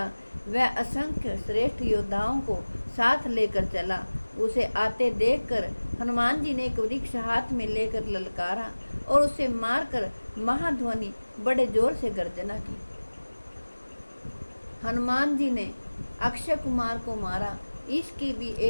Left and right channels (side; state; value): both; inverted; correlation -1.00